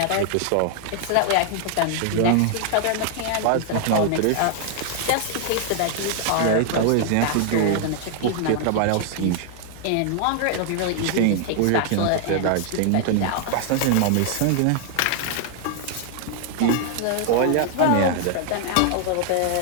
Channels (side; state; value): both; different; correlation 0.00